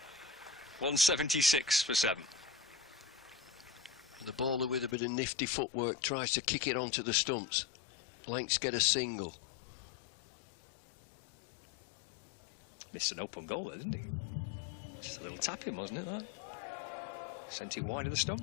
176 for 7. And the bowler with a bit of nifty footwork tries to kick it onto the stumps. Lancs get a single. Missed an open goal there, didn't he? Just a little tapping, wasn't it, that? Sent it wide of the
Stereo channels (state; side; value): drops out; right; at 5.0 s